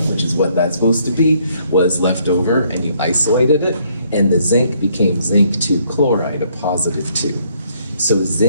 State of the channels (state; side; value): inverted; both; correlation -0.68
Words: which is what that's supposed to be, was left over, and you isolated it, and the zinc became zinc 2 chloride, a positive 2. So